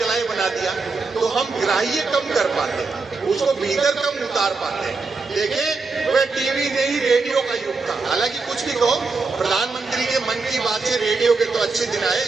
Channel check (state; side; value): quieter; left; 4.1 dB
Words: बना दिया, तो हम ग्राह्य कम कर पाते, उसको भीतर कम उतार पाते। देखें, वह टीवी नहीं रेडियो का युग था। हालांकि कुछ भी कहो, प्रधानमंत्री के मन की बात से रेडियो के तो अच्छे दिन आए,